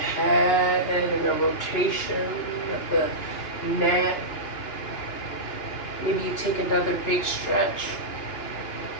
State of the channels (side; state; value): right; late; 2.9 ms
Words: and a rotation of the neck. Maybe you take another big stretch.